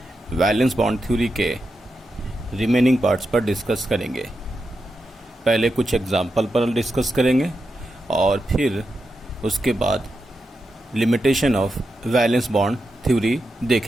वैलेंस बॉन्ड थ्योरी के रिमेनिंग पार्ट्स पर डिस्कस करेंगे। पहले कुछ एग्जाम्पल पर डिस्कस करेंगे और फिर उसके बाद limitation of valence bond theory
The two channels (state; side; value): normal; both; correlation 0.88